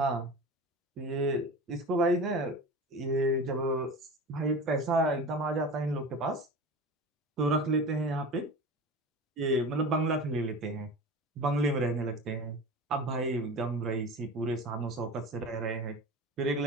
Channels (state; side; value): normal; both; correlation 0.32